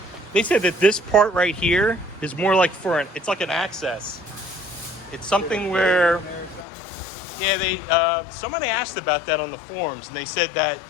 said that this part right here is more like it's like an access. It's something where, yeah, somebody asked about that on the forums, and they said that,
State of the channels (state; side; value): drops out; right; at 6.7 s